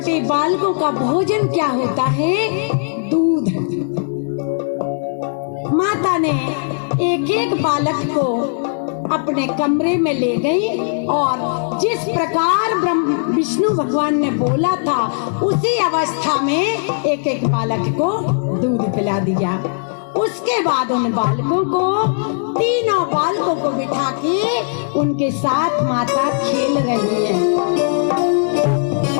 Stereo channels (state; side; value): silent; right; digital silence